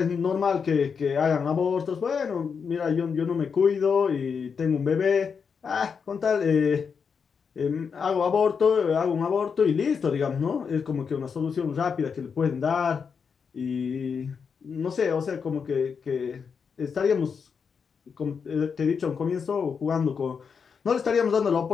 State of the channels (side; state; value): right; quieter; 6.1 dB